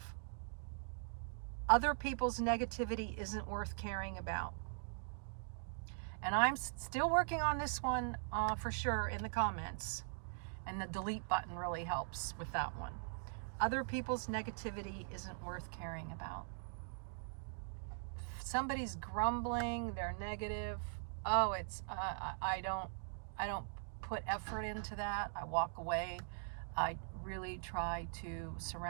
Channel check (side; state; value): left; silent; digital silence